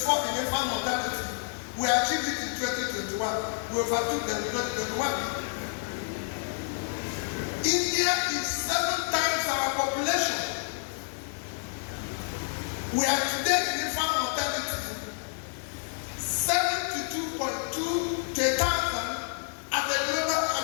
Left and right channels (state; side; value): silent; right; 58 dB below the other